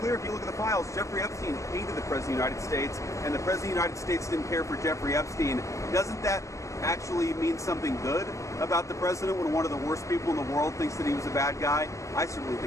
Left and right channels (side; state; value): right; late; 0.15 ms